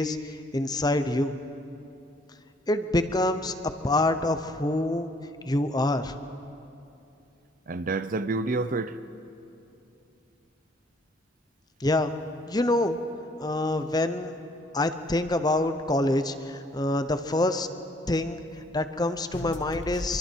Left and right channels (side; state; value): both; normal; correlation 0.62